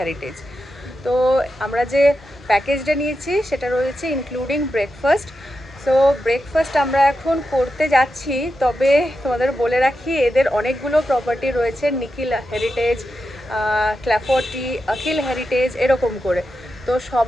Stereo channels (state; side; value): normal; both; correlation 0.89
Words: তো আমরা যে প্যাকেজটা নিয়েছি সেটা রয়েছে ইনক্লুডিং ব্রেকফাস্ট। সো ব্রেকফাস্ট আমরা এখন করতে যাচ্ছি, তবে তোমাদের বলে রাখি এদের অনেকগুলো প্রপার্টি রয়েছে, নিখিল হেরিটেজ, ক্ল্যাফোর্টি, অখিল হেরিটেজ এরকম করে। তো